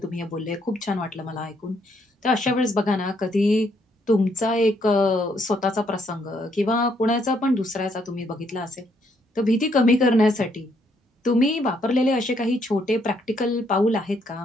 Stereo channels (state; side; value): normal; both; correlation 0.71